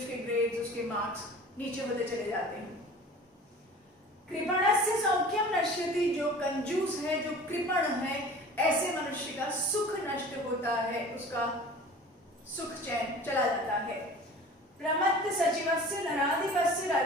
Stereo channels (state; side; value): normal; both; correlation 0.42